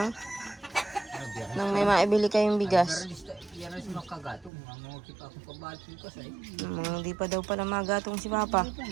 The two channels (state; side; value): drops out; left; at 4.5 s